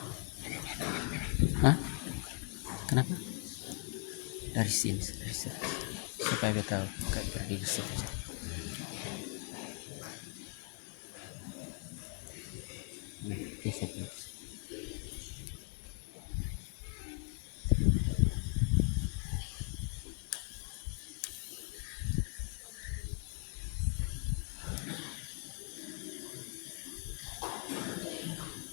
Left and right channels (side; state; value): right; quieter; 38.2 dB